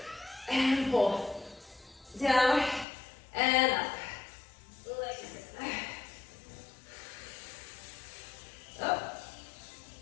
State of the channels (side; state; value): right; drops out; at 2.9 s